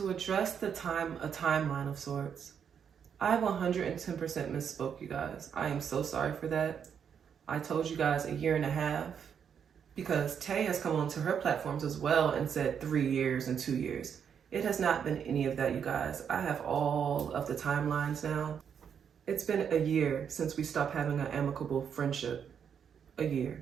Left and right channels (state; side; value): quieter; left; 7.6 dB